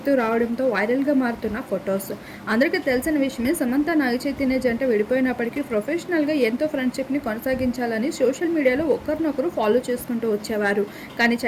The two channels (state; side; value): identical; both; correlation 1.00